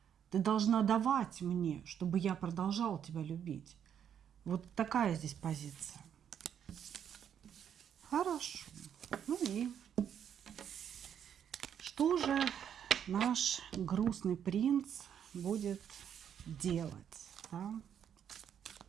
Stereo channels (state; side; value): quieter; left; 8.8 dB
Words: Ты должна давать мне, чтобы я продолжал тебя любить. Вот такая здесь позиция. Хорошо. Ну и что же наш грустный принц будет делать? Да?